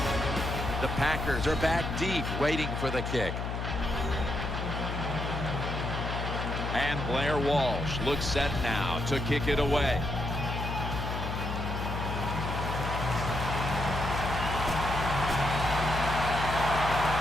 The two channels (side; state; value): left; noise; hum, 3 dB below the sound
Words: The Packers are back deep, waiting for the kick. And Blair Walsh looks set now to kick it away.